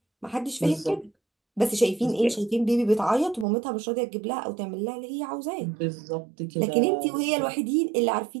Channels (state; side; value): drops out; left; at 3.5 s